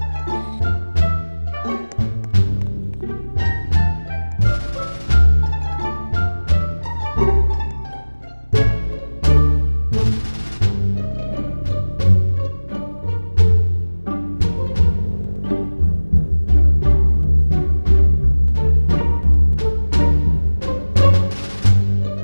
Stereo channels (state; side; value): inverted; both; correlation -1.00